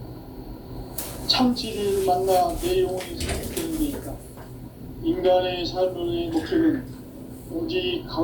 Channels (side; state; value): both; identical; correlation 1.00